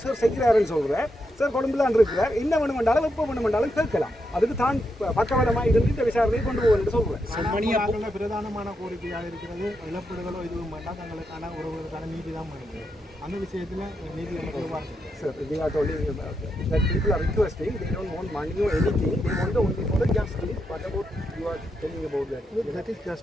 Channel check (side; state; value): both; normal; correlation 0.83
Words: சார் செய்கிறாருன்னு சொல்கிறேன். சார் கொழும்புலான் இருக்கிறார். என்ன வேணுமென்றாலும் எப்போ வேணுமென்றாலும் கேட்கலாம். அதுக்கு தான் பக்கவலமாக இருந்து இந்த விசாரணையை கொண்டு போகணும்னு சொல்கிறேன். பிரதானமான கோரிக்கையாக இருக்கிறது இழப்பீடுகளோ இதுவும் வேண்டாம், தங்களுக்கான ஒருவருக்கான நீதி தான் பண்ணுது. அந்த விஷயத்தில் நீதி Sir, they are only that people are requesting. They don't want money or anything. They want only for the justice. What about you are telling about that? That is